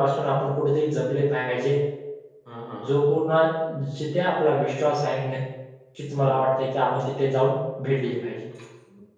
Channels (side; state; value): both; identical; correlation 1.00